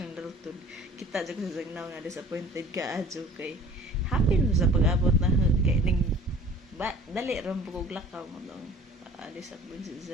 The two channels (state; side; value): normal; both; correlation 0.48